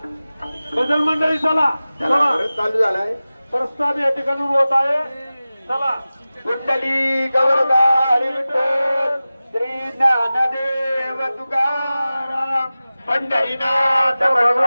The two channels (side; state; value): both; inverted; correlation -0.97